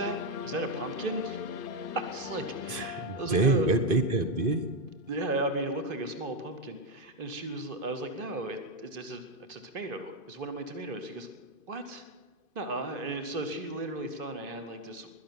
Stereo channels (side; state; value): left; late; 2.5 ms